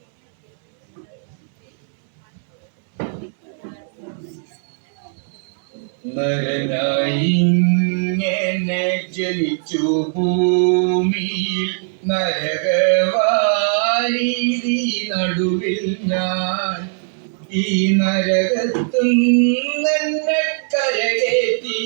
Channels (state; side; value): silent; left; 59 dB below the other